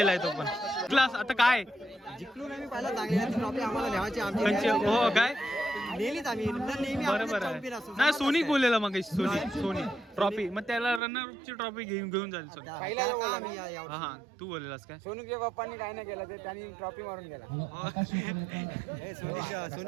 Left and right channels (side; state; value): left; drops out; at 11.0 s